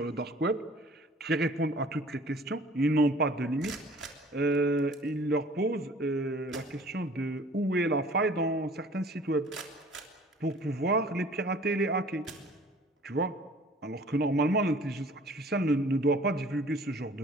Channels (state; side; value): normal; both; correlation 0.50